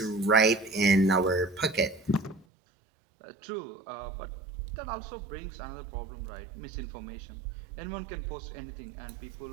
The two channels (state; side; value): drops out; left; at 2.5 s